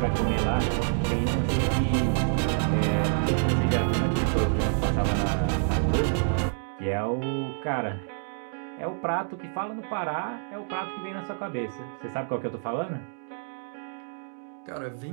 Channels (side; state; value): left; silent; digital silence